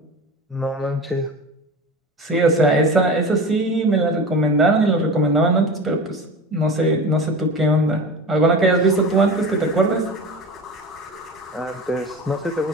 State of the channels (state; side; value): normal; both; correlation 0.31